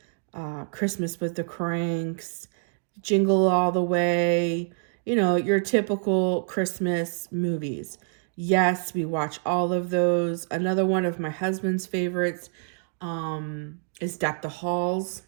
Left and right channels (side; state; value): left; silent; digital silence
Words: Christmas with the Cranks, Jingle All the Way, your typical Christmas movies. Yes, we watch all of those. Another one of my husband's favorites is Deck the Halls.